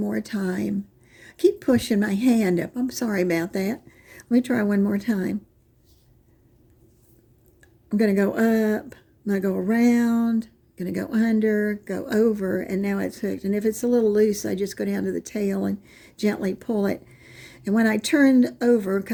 time. Keep pushing my hand up. I'm sorry about that. Let me try one more time. I'm going to go up. I'm going to go around. I'm going to go under, go over, and now it's hooked. And if it's a little loose, I just go down to the tail and gently pull it. And when I turn over,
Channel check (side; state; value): both; identical; correlation 1.00